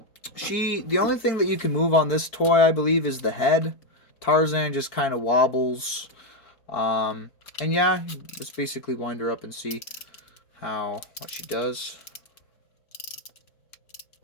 only thing that you can move on this toy, I believe, is the head. Tarzan just kind of wobbles. And yeah, just basically wind her up and see what she does.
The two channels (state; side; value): late; right; 4.5 ms